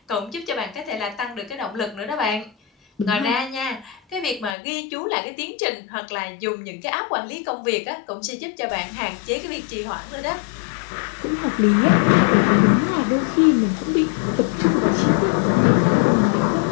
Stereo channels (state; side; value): drops out; right; at 4.5 s